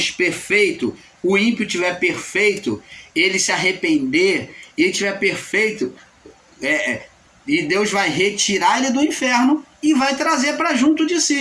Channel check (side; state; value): both; identical; correlation 1.00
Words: perfeito, o ímpio tiver perfeito, ele se arrepender, ele tiver perfeito, e Deus vai retirar ele do inferno e vai trazer para junto de